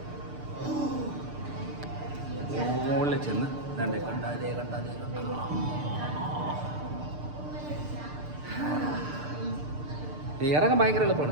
മുകളിൽ ചെന്ന് കണ്ടാലേ ഇറങ്ങാൻ ഭയങ്കര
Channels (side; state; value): left; late; 6.7 ms